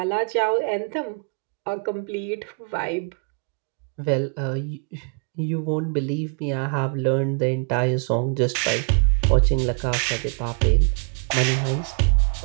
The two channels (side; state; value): left; quieter; 37.8 dB